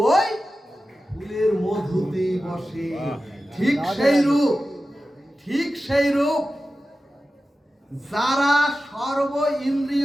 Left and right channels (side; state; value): both; normal; correlation 0.94